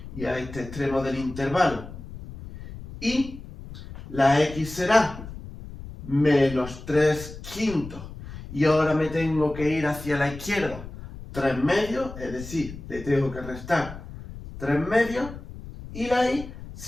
y a este extremo del intervalo. Y la X será menos 3/5 y ahora me tengo que ir hacia la izquierda 3 medios, es decir, le tengo que restar 3 medios, y la y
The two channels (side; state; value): left; noise; rumble, 13 dB below the sound